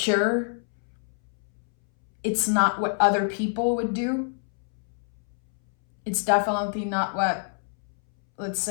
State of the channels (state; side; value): silent; right; 61 dB below the other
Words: It's not what other people would do. It's definitely not what, let's